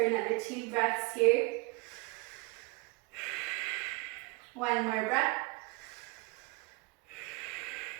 2 breaths here. One more breath.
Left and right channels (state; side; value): quieter; left; 26.5 dB